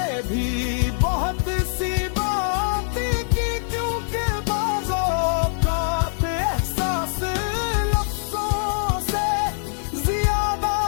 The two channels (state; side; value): silent; right; digital silence